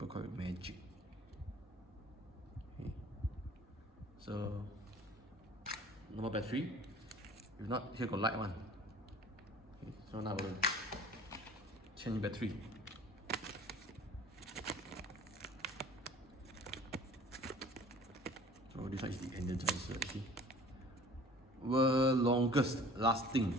call it magic. Okay. So, normal battery. If not, here got light one. Okay. So now we'll change battery. So this one is the Energizer. See, world longest lasting.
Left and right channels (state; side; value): normal; both; correlation 0.47